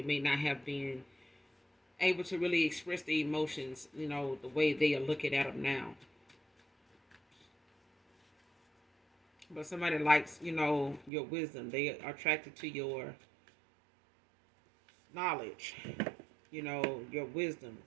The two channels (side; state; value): left; drops out; at 11.1 s